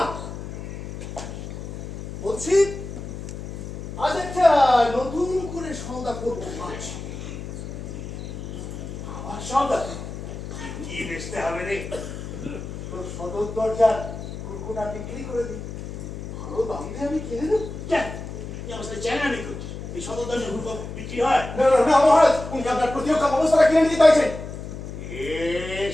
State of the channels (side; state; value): left; noise; hum, 9 dB below the sound